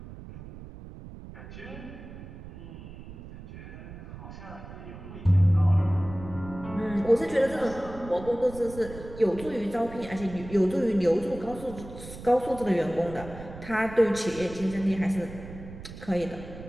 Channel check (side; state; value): right; noise; rumble, 14 dB below the sound